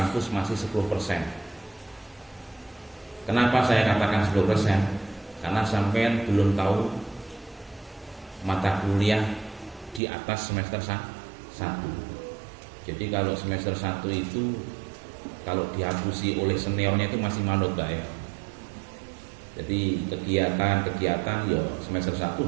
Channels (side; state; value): left; drops out; at 10.0 s